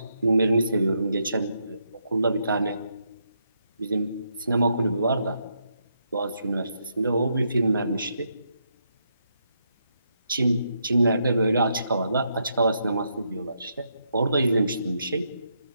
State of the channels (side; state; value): both; inverted; correlation -0.79